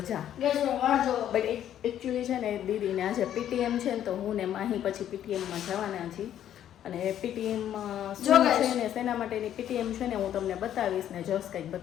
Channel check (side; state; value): right; quieter; 10.8 dB